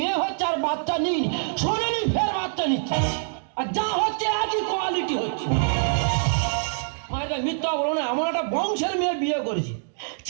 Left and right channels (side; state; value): left; silent; digital silence